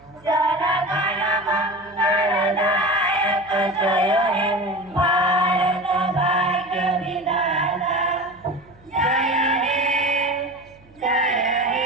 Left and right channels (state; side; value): noise; right; hum, 28 dB below the sound